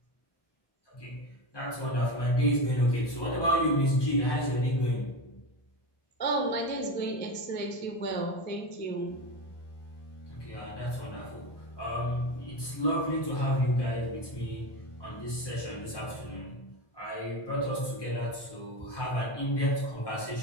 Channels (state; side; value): late; right; 1.2 ms